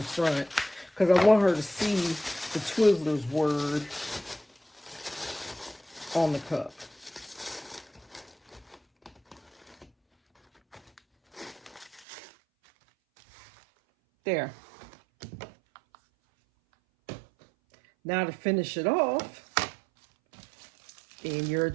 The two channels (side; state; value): left; drops out; at 12.1 s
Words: front, because I want her to see the Twizzlers word on the cup. There. Now to finish it off, in your